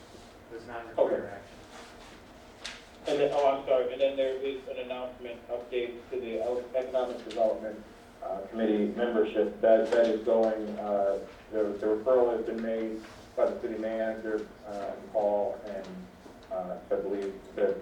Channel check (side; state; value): both; identical; correlation 1.00